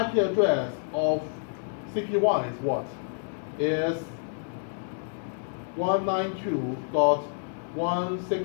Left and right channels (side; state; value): right; silent; digital silence